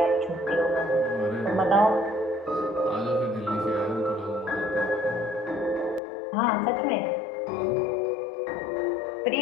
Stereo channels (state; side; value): drops out; right; at 6.0 s